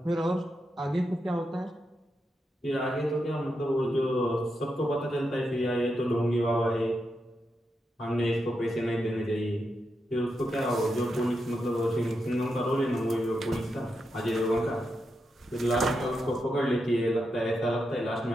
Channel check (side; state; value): both; normal; correlation 0.85